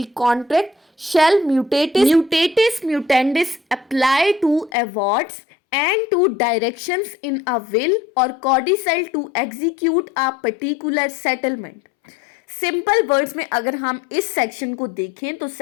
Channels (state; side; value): drops out; right; at 4.7 s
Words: contract shall mutatis mutandis apply to awards and to directions in a will or codicil to execute a particular settlement। Simple words में अगर हम इस section को देखें तो